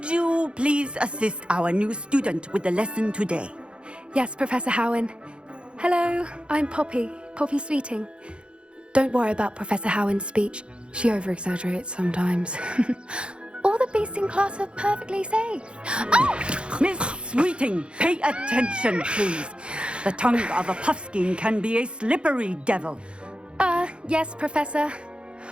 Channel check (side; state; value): left; late; 0.056 ms